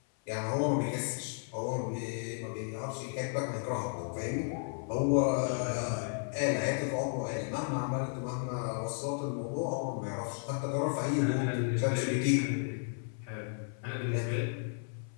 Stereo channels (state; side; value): silent; right; 55 dB below the other